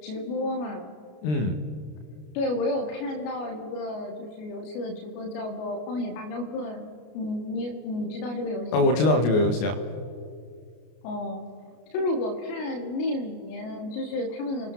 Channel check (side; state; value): right; late; 33 ms